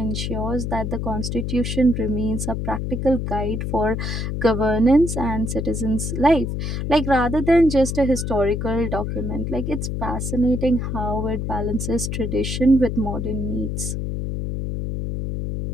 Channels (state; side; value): noise; left; hum, 3 dB below the sound